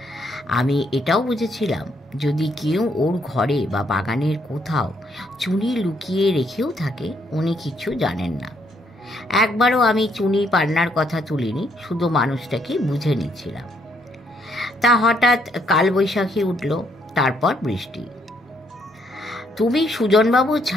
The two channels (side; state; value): both; normal; correlation 0.71